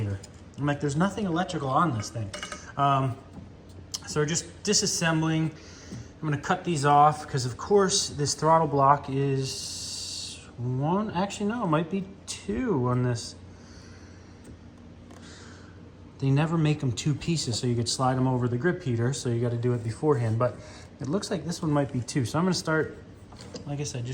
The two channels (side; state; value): both; identical; correlation 1.00